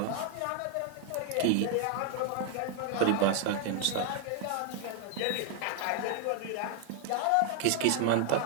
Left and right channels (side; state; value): both; different; correlation 0.00